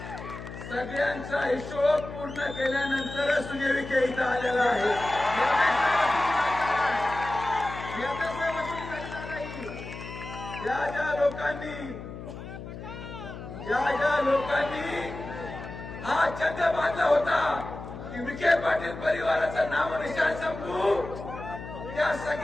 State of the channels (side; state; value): left; noise; hum, 11 dB below the sound